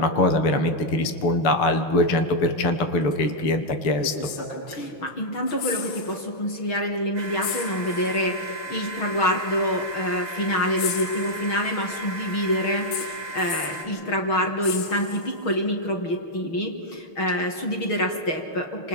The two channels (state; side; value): late; right; 6.3 ms